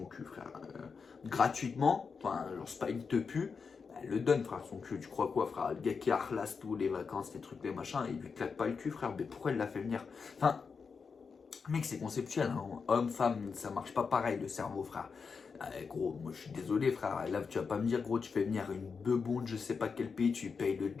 cul, frère, gratuitement, enfin, genre c'est pas une te pue, elle le donne, frère, son cul. Tu crois quoi, frère? Le gars qui harlasse tout, les vacances, les trucs, les machins, il lui claque pas le cul, frère. Mais pourquoi elle l'a fait venir? Enfin, mec, c'est conceptuel, hein. Homme, femme, ça marche pas pareil le cerveau, frère. Gros, moi je suis désolé, frère. Là, tu vas pas me dire, gros, tu fais venir une bebonde, je sais pas quel pays, tu payes le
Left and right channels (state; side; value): quieter; right; 5.4 dB